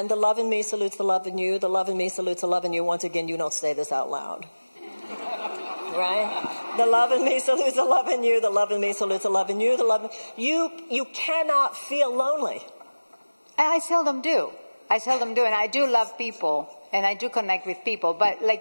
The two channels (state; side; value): inverted; both; correlation -1.00